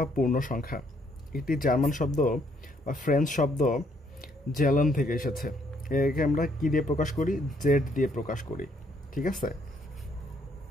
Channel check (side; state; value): both; normal; correlation 0.69